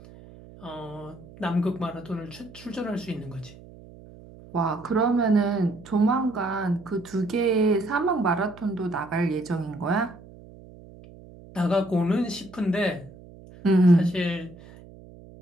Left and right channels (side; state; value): right; noise; hum, 20 dB below the sound